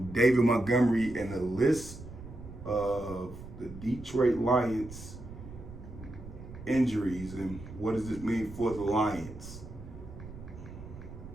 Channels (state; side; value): noise; right; rumble, 13 dB below the sound